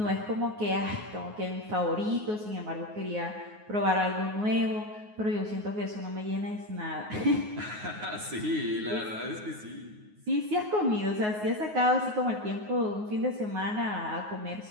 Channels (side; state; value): left; late; 9.5 ms